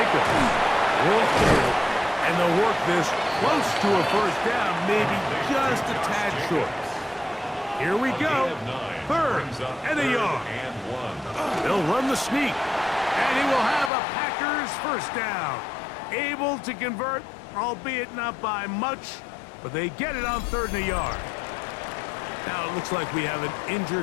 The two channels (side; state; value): right; drops out; at 13.9 s